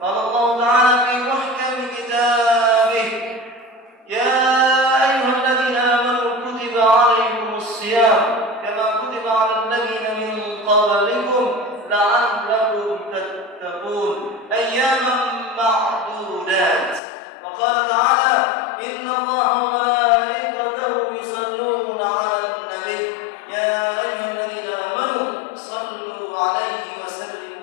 قال الله تعالى في محكم كتابه: يا ايها الذين امنوا كتب عليكم الصيام كما كتب على الذين من قبلكم لعلكم تتقون أياما معدودات. وقال تعالى: إن الله وملائكته يصلون على النبي يا أيها الذين آمنوا صلوا عليه وسلموا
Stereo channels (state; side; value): drops out; right; at 17.0 s